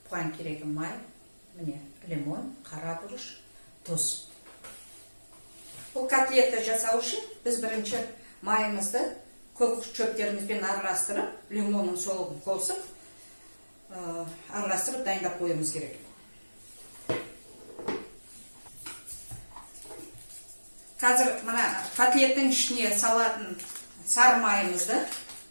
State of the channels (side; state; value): both; inverted; correlation -1.00